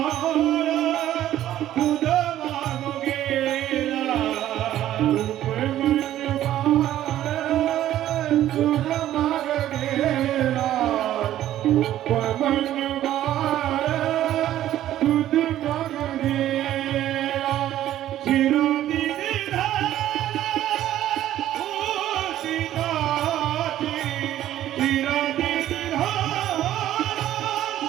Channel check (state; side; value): quieter; left; 12.7 dB